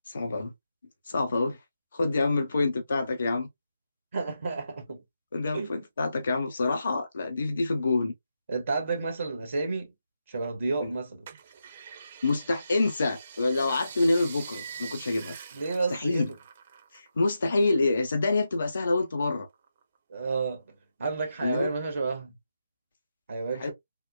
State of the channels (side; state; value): both; inverted; correlation -0.86